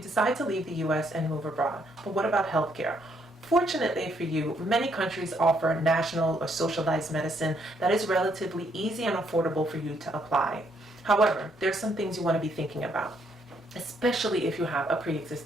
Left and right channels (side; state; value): both; normal; correlation 0.72